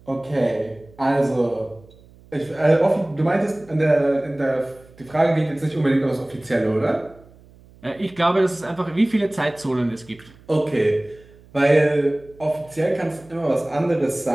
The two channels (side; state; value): right; noise; hum, 25 dB below the sound